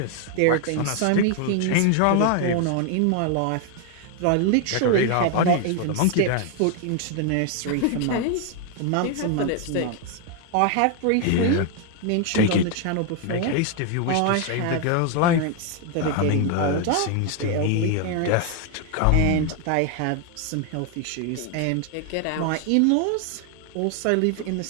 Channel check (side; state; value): both; different; correlation 0.01